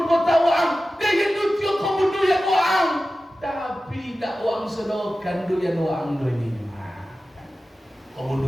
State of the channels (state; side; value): normal; both; correlation 0.95